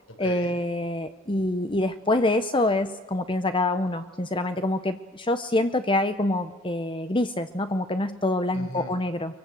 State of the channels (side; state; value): both; normal; correlation 0.57